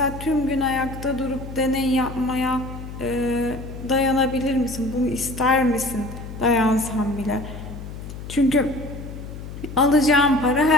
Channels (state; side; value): noise; left; hum, 11 dB below the sound